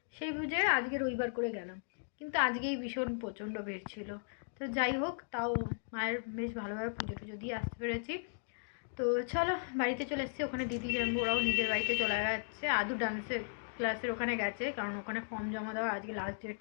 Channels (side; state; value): right; silent; digital silence